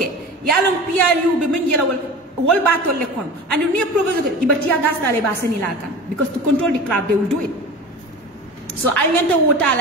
yalon PRU be men yela wol batol le kono and near provocation ibatia gas dale ba seni la kan because to control the crowd they will do it. So aliyanta wota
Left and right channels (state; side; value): normal; both; correlation 0.34